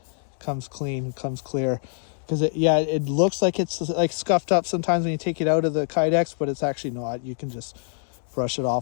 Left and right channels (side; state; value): right; silent; digital silence